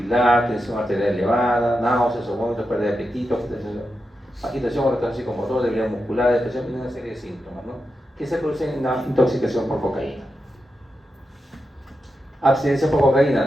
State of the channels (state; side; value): normal; both; correlation 0.88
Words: tensión arterial elevada, náuseas o vómitos, pérdida de apetito, agitación o retraso psicomotor, debilidad muscular, depresión y una serie de síntomas, ¿no? Que se producen en una intoxicación por cocaína. Abstinencia por